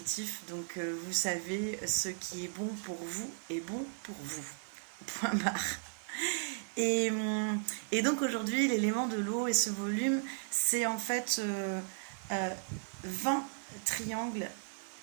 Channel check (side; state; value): left; silent; digital silence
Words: donc vous savez, ce qui est bon pour vous est bon pour vous. Point barre. Et donc aujourd'hui, l'élément de l'eau et ce volume, c'est en fait 20 triangles